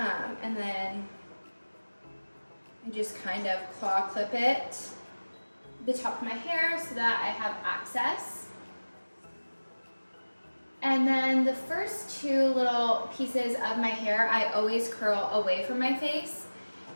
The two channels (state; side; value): inverted; both; correlation -1.00